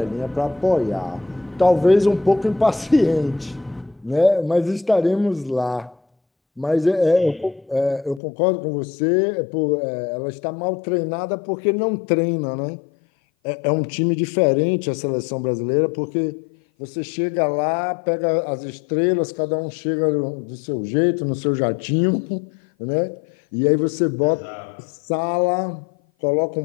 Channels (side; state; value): right; drops out; at 8.2 s